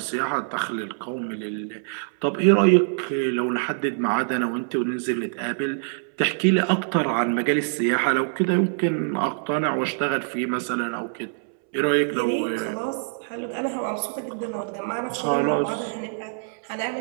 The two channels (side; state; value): left; silent; 62 dB below the other